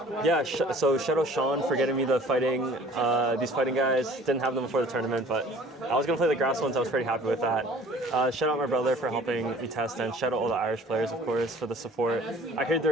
Yeah, so shout out Sean for getting me these fighting guys. Didn't have them before the tournament, but I was going to play the grass ones. I was pretty happy with that. Shout out my brother for helping me test, and shout out all the Irish players, of course, for the support. I heard they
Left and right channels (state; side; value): normal; both; correlation 0.51